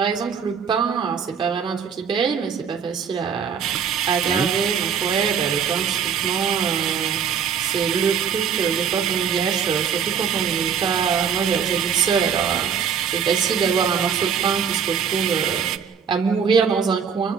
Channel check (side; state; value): left; quieter; 7.2 dB